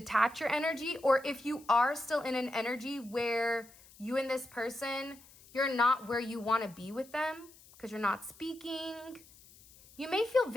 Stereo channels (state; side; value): noise; left; hiss, 24 dB below the sound